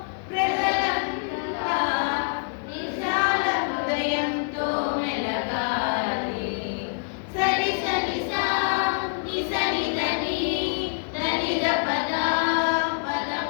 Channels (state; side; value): silent; right; digital silence